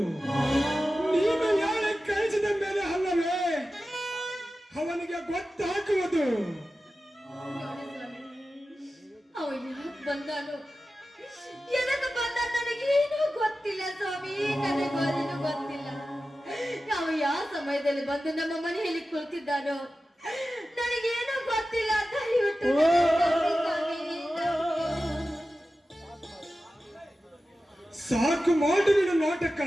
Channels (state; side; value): normal; both; correlation 0.94